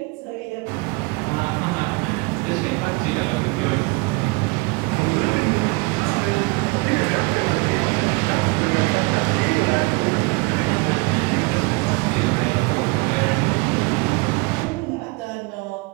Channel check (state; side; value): quieter; left; 26.8 dB